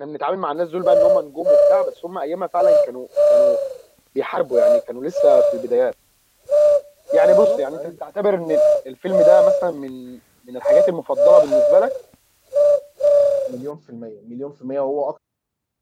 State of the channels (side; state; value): both; identical; correlation 1.00